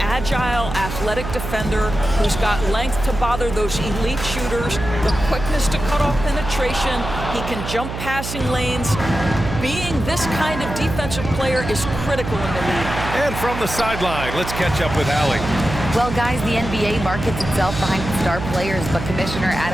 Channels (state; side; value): noise; right; hum, 7 dB below the sound